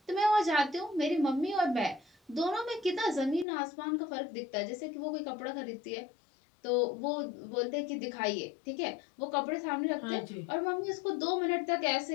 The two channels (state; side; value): drops out; right; at 3.5 s